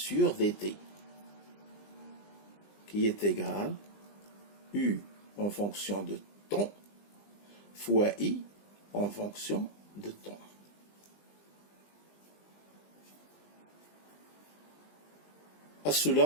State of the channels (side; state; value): right; late; 20 ms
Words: dt qui est égal U en fonction de temps fois I en fonction de temps. À